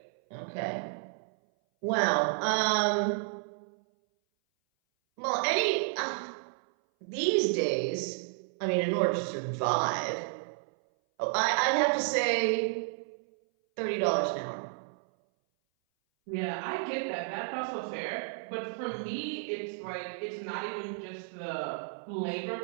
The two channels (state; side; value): silent; left; 57 dB below the other